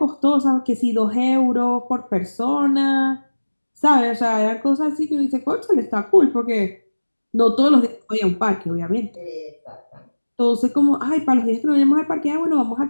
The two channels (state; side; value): inverted; both; correlation -1.00